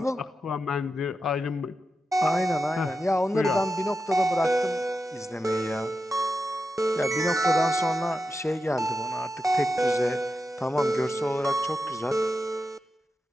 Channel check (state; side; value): normal; both; correlation 0.89